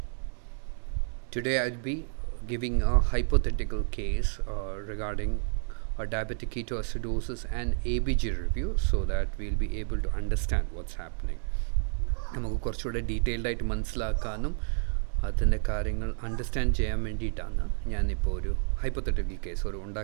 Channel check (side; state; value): left; silent; digital silence